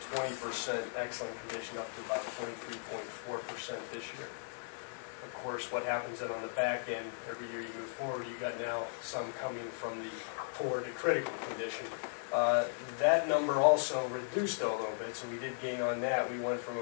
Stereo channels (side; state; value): right; silent; digital silence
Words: 20% excellent condition up to about 23.4% this year. Of course, what happens then on the back end, every year you move forward, you got now some coming from the poor to critical condition. That number also reduced a little bit, so we did gain on that. We went from